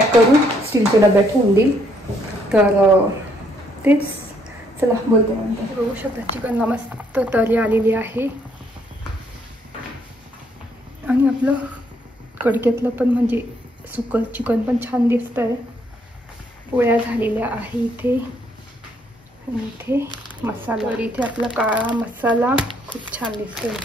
करून स्टीलच्या डब्यात ठेवून देईल. तर तेच चला बोलते नंतर. बघू शकता चिकनला मस्त तरी आलेली आहे आणि आपलं कडक्यातलं पण म्हणजे सुकं चिकन पण छान दिसतंय. पोळ्या झालेल्या आहे इथे आणि इथे मसाला. तर इथे आपला काळा मसाला खूप छान दिसतोय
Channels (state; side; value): normal; both; correlation 0.70